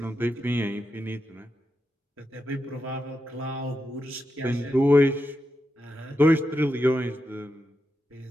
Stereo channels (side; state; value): both; normal; correlation 0.87